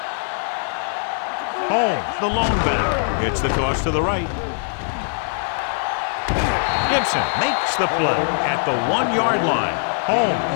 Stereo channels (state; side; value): silent; right; digital silence